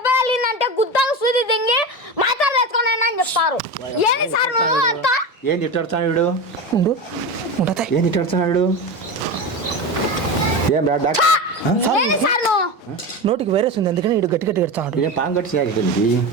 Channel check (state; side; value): late; right; 1.3 ms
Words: తగిలిందంటే గుద్దకు సూది దింగి మాత్రం వేసుకుని అని చెప్తారు ఏంది సార్ నువ్వు అంతా ఏం తిట్టాడుతున్నాడు ఉండు ఉండతా ఏం తిట్టాడుతున్నాడు ఏం రా డాక్టర్ ఏంది సార్ నువ్వు నోటికి వైరస్ ఉంది అందుకని ఇటు గట్టి కడతాడు ఇదే పాము కట్టి సాగుతుంది